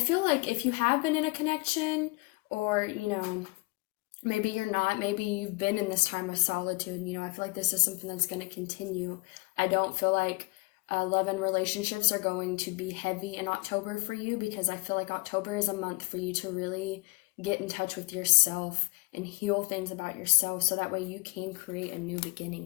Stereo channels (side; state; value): right; quieter; 27.4 dB